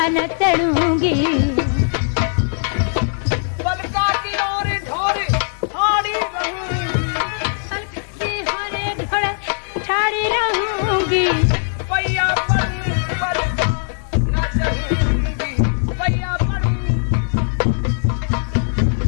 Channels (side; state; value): right; silent; 66 dB below the other